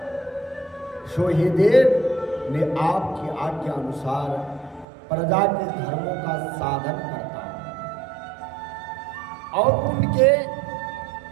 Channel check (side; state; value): left; drops out; at 4.9 s